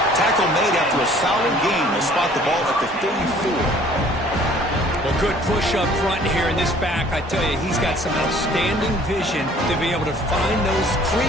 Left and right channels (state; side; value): normal; both; correlation 0.54